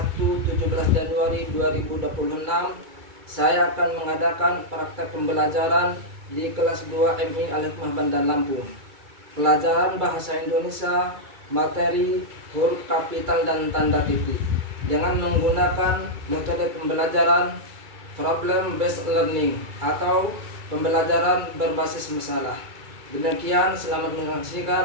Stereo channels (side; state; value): left; late; 2.3 ms